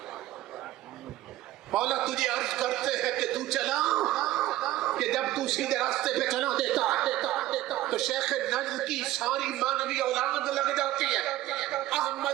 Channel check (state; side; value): quieter; left; 15.4 dB